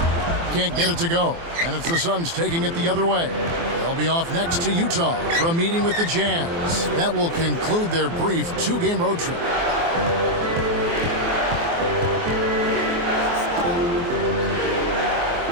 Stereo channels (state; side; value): late; left; 24 ms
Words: Can't get it to go. And it's the Suns taking it the other way. They'll be off next to Utah for a meeting with the Jazz. That will conclude their brief 2-game road trip.